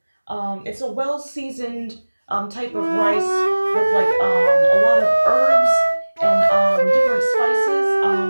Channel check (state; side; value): inverted; both; correlation -1.00